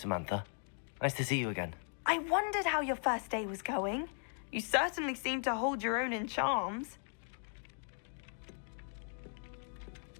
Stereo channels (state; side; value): silent; right; 53 dB below the other